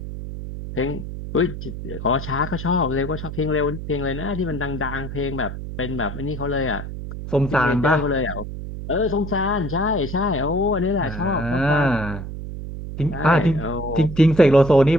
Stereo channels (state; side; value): noise; right; hum, 8 dB below the sound